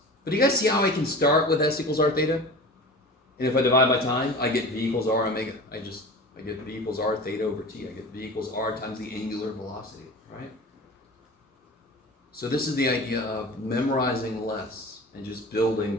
But do you guys see how I can start with S equals R theta? And if I divide by time, I get V equals R omega. I get V equals R theta over T. I get V equals R times the angular velocity, right? So this is the idea of memorizing less and just building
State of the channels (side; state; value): both; normal; correlation 0.35